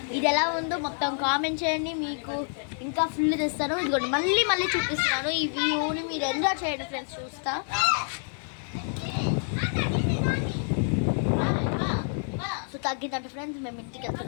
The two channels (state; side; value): silent; right; 60 dB below the other